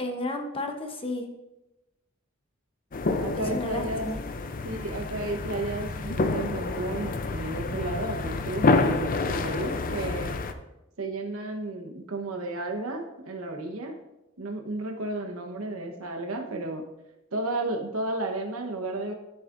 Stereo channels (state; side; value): normal; both; correlation 0.22